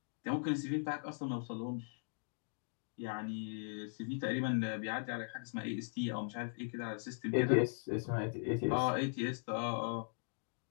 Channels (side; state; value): right; silent; digital silence